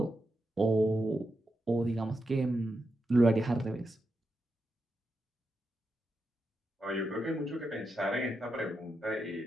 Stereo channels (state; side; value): normal; both; correlation 0.86